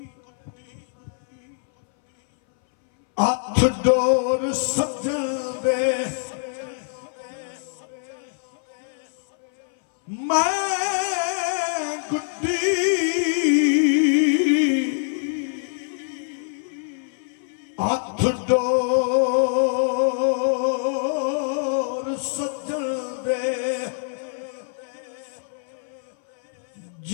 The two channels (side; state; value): right; silent; 60 dB below the other